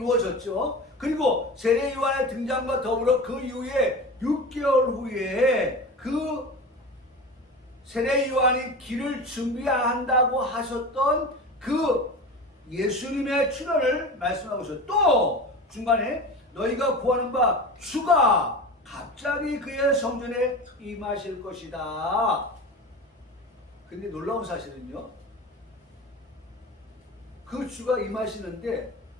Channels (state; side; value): normal; both; correlation 0.30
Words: 그리고 세례 요한의 등장과 더불어 그 이후에 6개월 후에 그 세례 요한이 길을 준비한다고 하셨던 그 예수님의 출현을 말씀하고 있어요. 또 중간에 너희가 구하는 바 주가 갑자기 그의 성전에 임하실 것이다. 근데 놀라운 사실은요, 그 주가 임하시는데